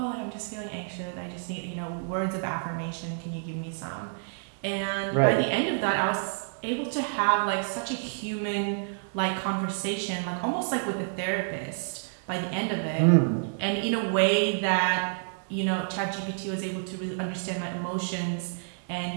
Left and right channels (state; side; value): silent; left; digital silence